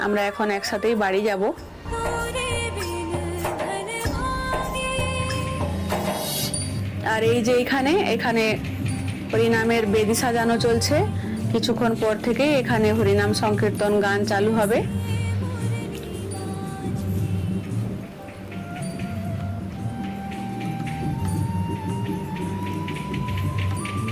আমরা এখন একসাথেই বাড়ি যাব। আর এই যে এখানে হরিনামের বেদি সাজানো চলছে। কিছুক্ষণ পর থেকে এখানে হরিনাম সংকীর্তন গান চালু হবে।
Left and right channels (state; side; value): identical; both; correlation 1.00